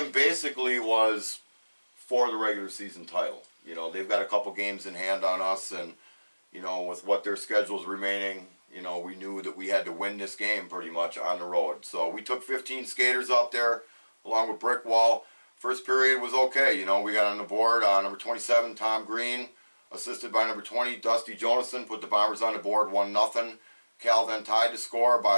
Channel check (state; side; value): inverted; both; correlation -1.00